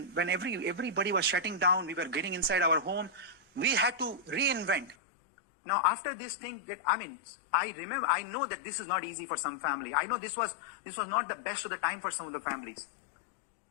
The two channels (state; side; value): drops out; right; at 5.0 s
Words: everybody was shutting down, we were getting inside our home, we had to reinvent. Now, after this thing, I know that this is not easy for some family. I know this was not the best of the time for some of the families.